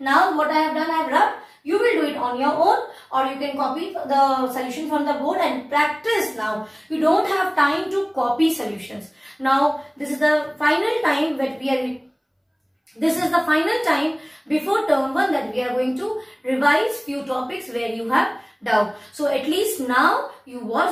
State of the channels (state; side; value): identical; both; correlation 1.00